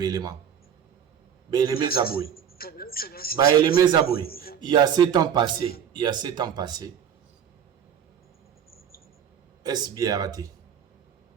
élément. Bélémé Zaboui. Bélémé Zaboui. Il y a 7 ans passés. Est-ce bien raté?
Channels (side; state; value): left; quieter; 8.5 dB